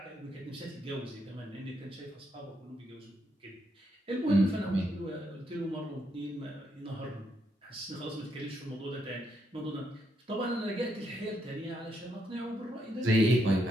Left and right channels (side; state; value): both; normal; correlation 0.77